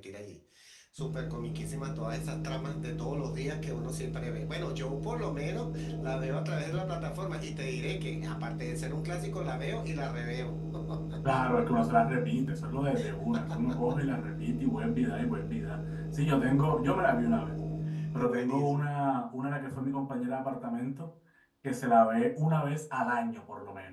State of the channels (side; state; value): both; identical; correlation 1.00